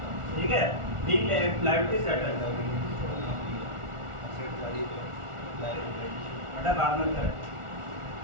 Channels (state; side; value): late; left; 1.4 ms